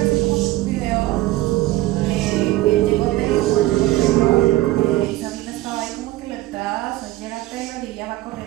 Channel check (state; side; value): quieter; left; 17.2 dB